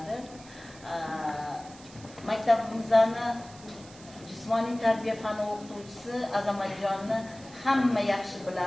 Maktabimizni jismoniy tarbiya fani o'qituvchisi Azamatjonni hamma yaxshi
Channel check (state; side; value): noise; right; hiss, 21 dB below the sound